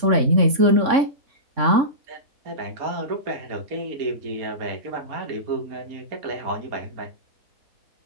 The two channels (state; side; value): late; left; 3.6 ms